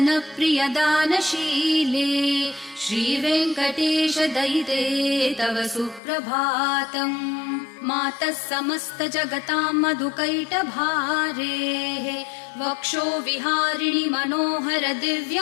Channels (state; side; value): drops out; right; at 6.0 s